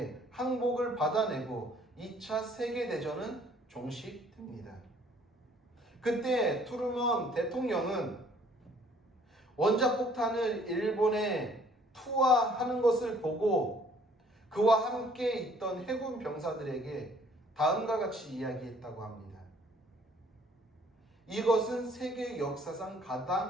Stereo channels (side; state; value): both; normal; correlation 0.59